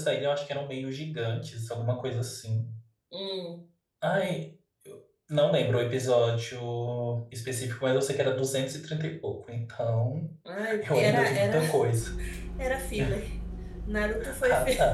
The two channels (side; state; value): both; identical; correlation 1.00